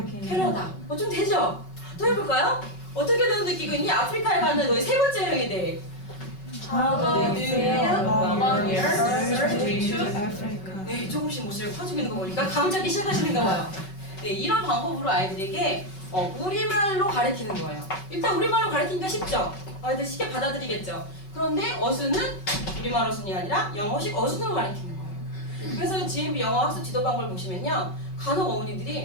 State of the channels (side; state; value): right; late; 5.3 ms